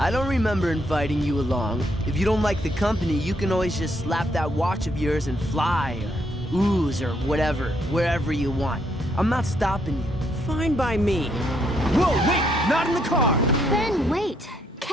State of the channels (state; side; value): normal; both; correlation 0.73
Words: don't remember inviting you along. If you don't like the company, you can always just slap that watch of yours and fly, or ooze, or whatever, wherever you want. I'm not stopping you. Fine by me. Whoa, wait! Not in the car! Ben, wait!